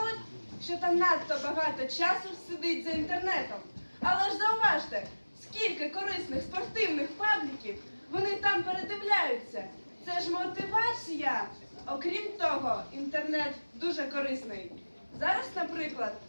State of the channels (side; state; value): both; inverted; correlation -1.00